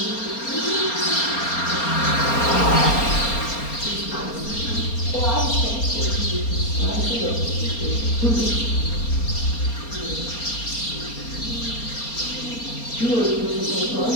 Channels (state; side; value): late; right; 4.3 ms